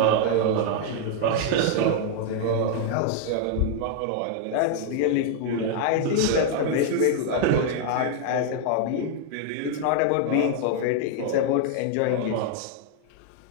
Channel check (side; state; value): both; different; correlation 0.00